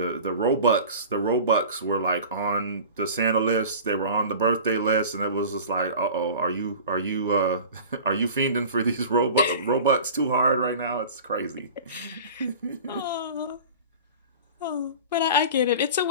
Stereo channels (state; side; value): inverted; both; correlation -0.38